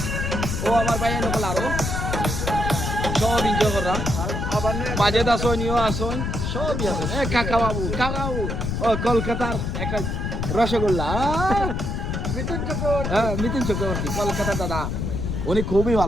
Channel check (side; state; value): left; noise; rumble, 2 dB below the sound